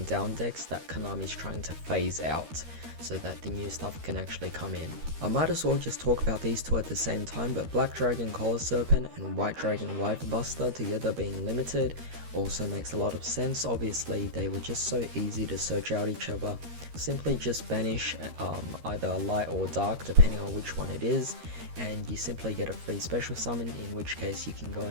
down decks that Konami's trying to phase out, so that the new stuff can actually come in. I might as well just talk about these two at the same time, but Black Dragon Collar Serpent and White Dragon Wyvern Buster together being limited also makes a lot of sense. Obviously they were just so easy to search out each other. Simply just banish either light or dark depending on which one it is, and you simply get a free special summon, in which case you can go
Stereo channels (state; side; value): late; left; 13 ms